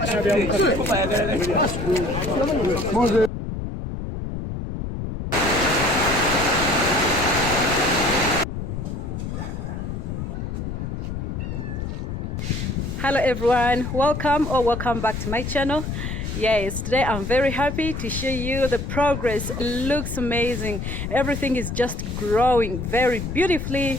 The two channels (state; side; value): noise; left; rumble, 5 dB below the sound